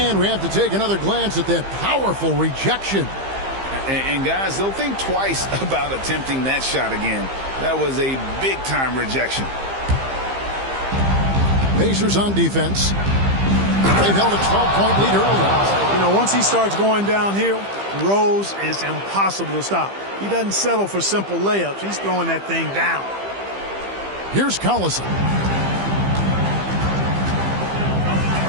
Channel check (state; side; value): late; left; 15 ms